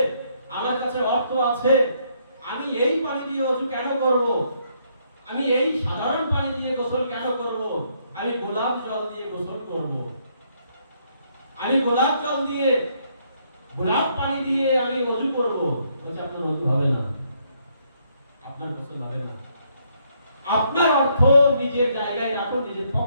আমার কাছে অর্থ আছে, আমি এই পানি দিয়ে ওযু কেন করব? আমি এই সাধারণ পানি দিয়ে গোসল কেন করব? আমি গোলাপ জল দিয়ে গোসল করব। আমি গোলাপ জল দিয়ে, গোলাপ পানি দিয়ে আমি ওযু করব। বলছে আপনার ওযু হবে না, আপনার গোসল হবে না। আপনার অর্থ নিজের জায়গায় রাখুন, নিজের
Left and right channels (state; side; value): inverted; both; correlation -0.71